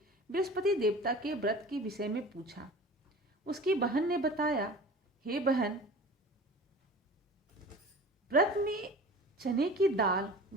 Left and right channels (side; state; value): both; normal; correlation 0.39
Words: बृहस्पति देवता के व्रत के विषय में पूछा। उसकी बहन ने बताया, हे बहन, व्रत में चने की दाल,